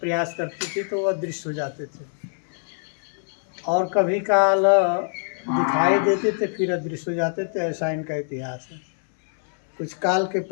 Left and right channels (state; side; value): silent; right; 62 dB below the other